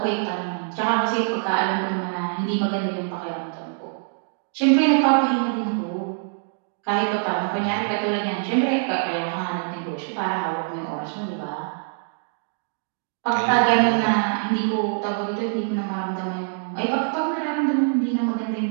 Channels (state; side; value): silent; left; digital silence